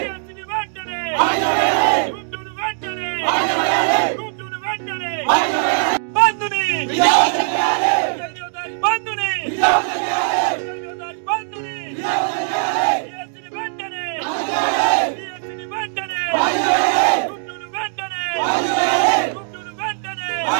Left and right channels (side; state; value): left; silent; digital silence